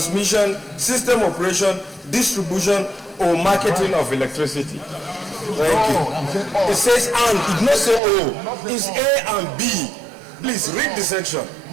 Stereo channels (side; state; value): left; drops out; at 8.0 s